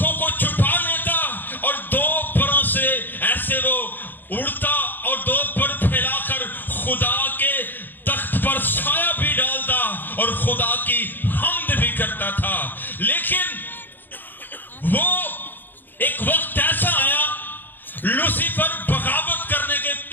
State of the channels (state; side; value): late; right; 0.091 ms